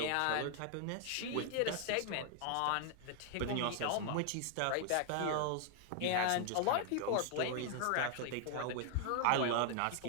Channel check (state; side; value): different; both; correlation 0.00